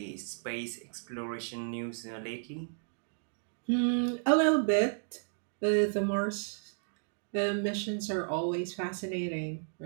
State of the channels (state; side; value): silent; left; digital silence